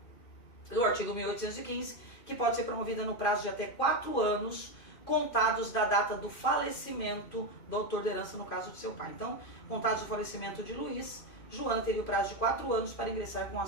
no artigo 1815, que pode ser promovida no prazo de até 4 anos, contados da data do falecimento do autor da herança, no caso do seu pai. Então, contados do falecimento de Luiz, Joana teria o prazo de 4 anos para ingressar com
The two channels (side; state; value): right; late; 2.5 ms